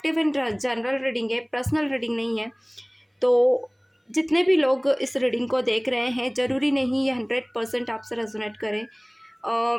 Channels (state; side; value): identical; both; correlation 1.00